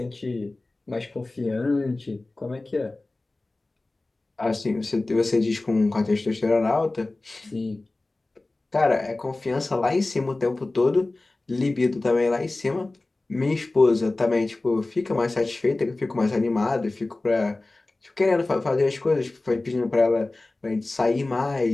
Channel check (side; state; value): right; quieter; 3.0 dB